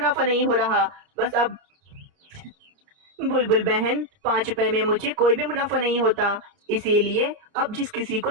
नहीं हो रहा। बस अब बुलबुल बहन, 5 रुपए में मुझे कोई भी मुनाफा नहीं होता, इसीलिए अब जिस किसी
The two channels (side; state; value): left; late; 29 ms